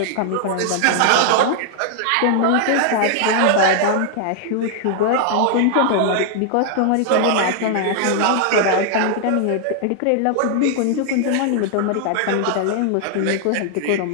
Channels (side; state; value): both; different; correlation 0.00